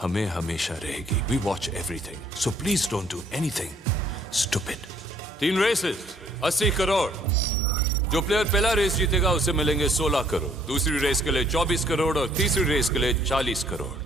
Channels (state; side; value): normal; both; correlation 0.63